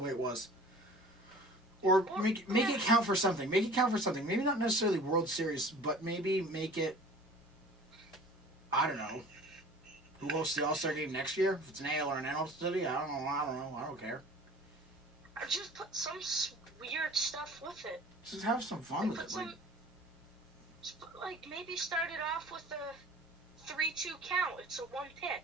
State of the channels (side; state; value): both; normal; correlation 0.45